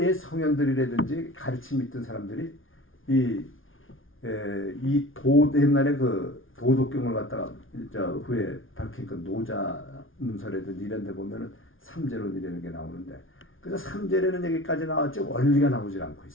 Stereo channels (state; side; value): late; right; 0.58 ms